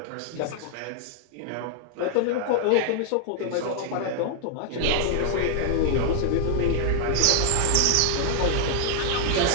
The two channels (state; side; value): different; both; correlation 0.00